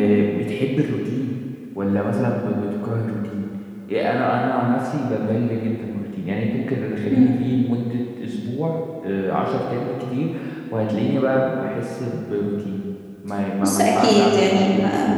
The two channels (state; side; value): identical; both; correlation 1.00